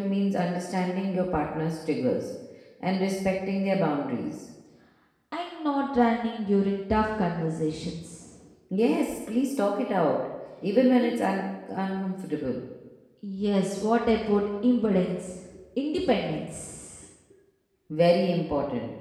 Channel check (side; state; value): both; identical; correlation 1.00